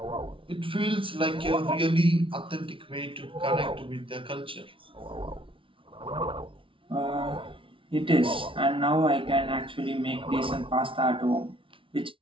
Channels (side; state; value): left; late; 0.25 ms